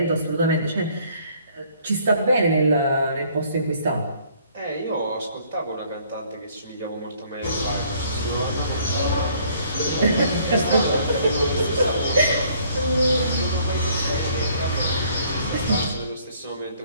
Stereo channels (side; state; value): both; inverted; correlation -0.61